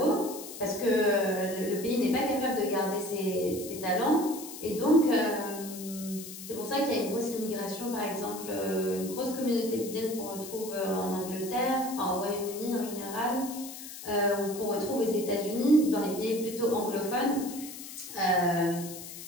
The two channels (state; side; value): noise; left; hiss, 12 dB below the sound